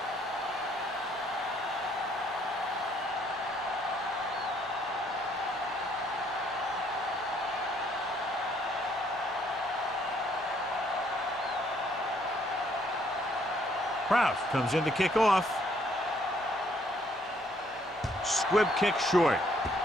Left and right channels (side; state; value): both; normal; correlation 0.67